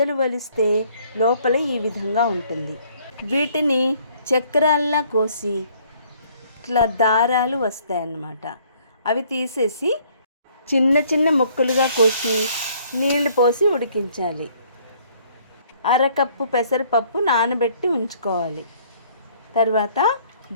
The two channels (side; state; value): both; inverted; correlation -0.61